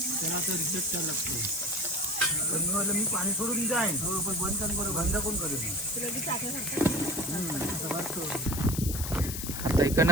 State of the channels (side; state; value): left; noise; hiss, 5 dB below the sound